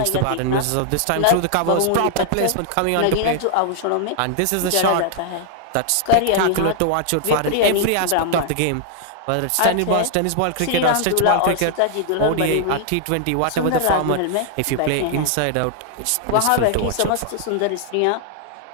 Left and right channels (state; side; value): different; both; correlation -0.01